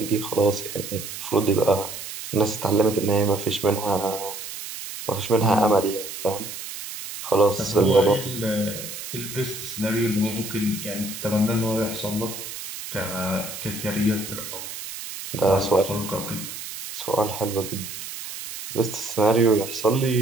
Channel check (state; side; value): noise; right; hiss, 9 dB below the sound